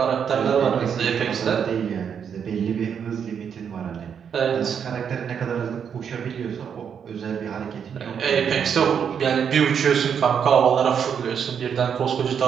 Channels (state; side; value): quieter; left; 7.6 dB